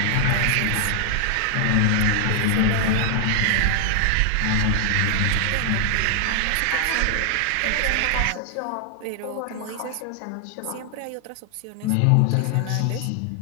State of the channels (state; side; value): different; both; correlation 0.00